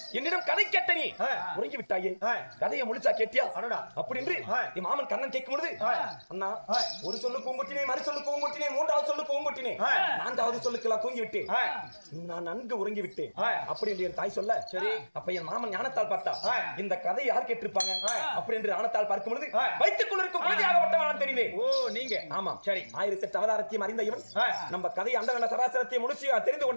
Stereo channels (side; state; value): both; inverted; correlation -1.00